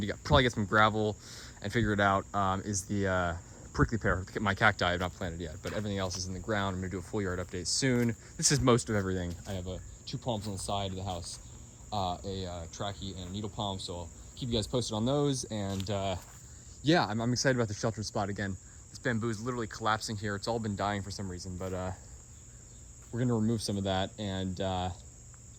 to probably get some gravel and figure it out, is the prickly pear. My cacti I have not planted yet, but everything else is in the ground. I'm gonna do a full yard update soon. This is most of everything. I have 2 palms on the side of the house, a trachea and a needle palm, so I'll keep you guys posted on those. And yeah, I'm excited about the sheltered spot again. This bamboo is literally collapsing here. It's all been dying for some reason, but we're gonna remove some of that, and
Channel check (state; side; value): identical; both; correlation 1.00